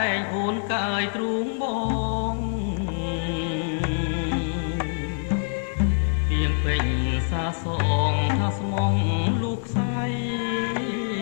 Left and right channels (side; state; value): right; silent; 62 dB below the other